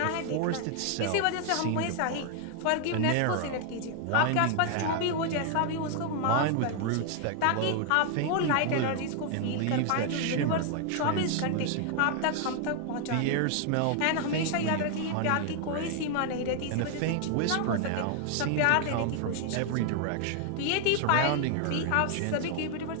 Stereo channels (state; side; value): different; both; correlation 0.00